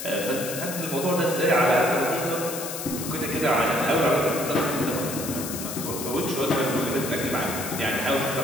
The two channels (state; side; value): noise; left; hiss, 7 dB below the sound